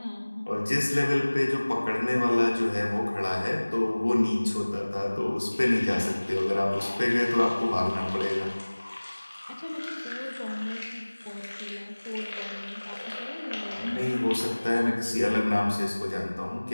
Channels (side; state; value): both; inverted; correlation -1.00